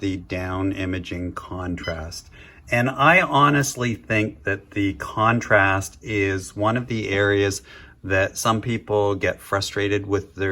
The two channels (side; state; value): both; identical; correlation 1.00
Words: down imaging contrast. And I honestly think that the contrast is one of the areas that some people get frustrated with